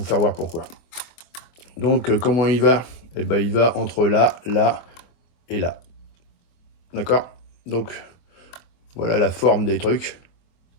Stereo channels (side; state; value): right; late; 24 ms